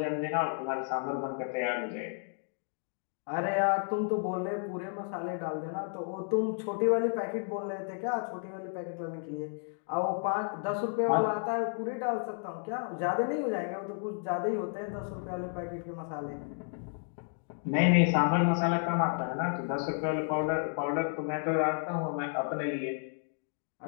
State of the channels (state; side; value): silent; right; 56 dB below the other